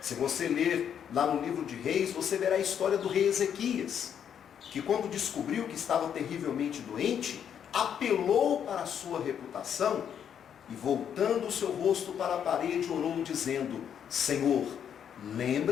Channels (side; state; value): right; quieter; 8.6 dB